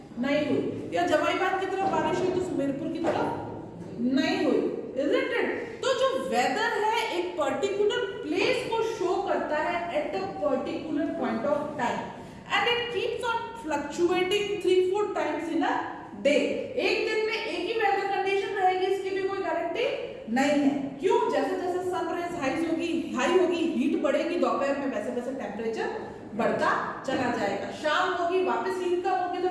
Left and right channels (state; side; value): identical; both; correlation 1.00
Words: नहीं हुई, या जमाईबाग की तरफ बारिश हुई तो सुमेरपुर की तरफ नहीं हुई. Isn't it? तो जो वेदर है एक पर्टिकुलर प्लेस को शो करता है at a particular point of time and it keeps on fluctuating 3-4 times in a day. एक दिन में एक ही वेदर कंडीशन रहेगी इसकी भी कोई गारंटी नहीं है. क्यों? जैसे जैसे सनराइज हाई होगी हीट बढ़ेगी, दोपहर में वैसे वैसे टेम्परेचर बढ़ता चला जाएगा. शाम होगी वापस हीट कम होगी